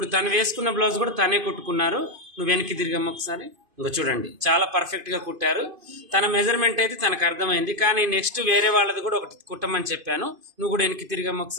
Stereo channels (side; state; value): left; late; 2.5 ms